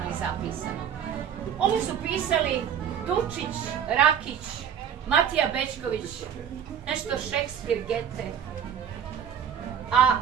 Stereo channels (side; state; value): left; quieter; 8.4 dB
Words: i zapisano. Ovo su pisali Dučić, Rakić, Matija Bečković, nešto Šekspir, Gete. A